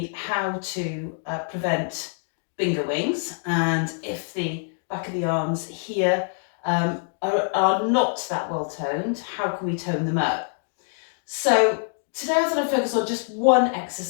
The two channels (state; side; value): silent; right; 62 dB below the other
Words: how to prevent bingo wings, and if the back of the arms here are not that well toned, how can we tone them up? So today I thought I'd focus on just one